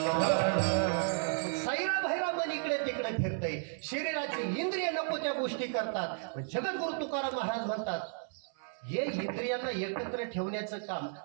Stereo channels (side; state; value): left; silent; 55 dB below the other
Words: साईरा भैरा मन इकडे तिकडे फिरतय, शरीराची इंद्रिय नको त्या गोष्टी करतात. जगद्गुरु तुकाराम महाराज म्हणतात, हे इंद्रियांना एकत्र ठेवण्याचं काम